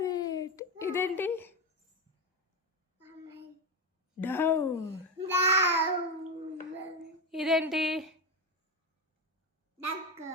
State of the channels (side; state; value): both; normal; correlation 0.13